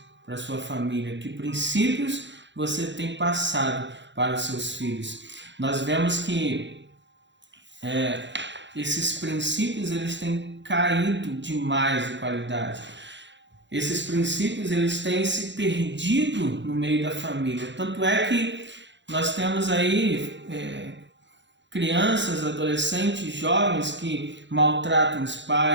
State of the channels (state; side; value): late; left; 0.53 ms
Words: para a sua família? Que princípios você tem passado para os seus filhos? Nós vemos que esses princípios eles têm caído demais de qualidade. Esses princípios eles têm se perdido no meio da família. Tanto é que nós temos aí crianças, adolescentes, jovens que maltratam os